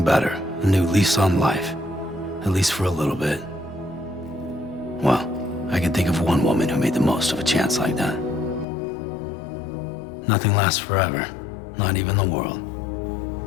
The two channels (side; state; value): right; drops out; at 8.7 s